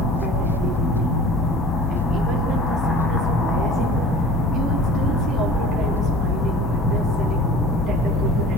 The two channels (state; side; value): normal; both; correlation 0.42